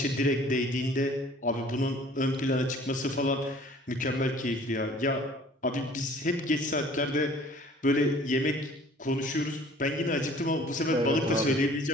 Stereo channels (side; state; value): both; normal; correlation 0.52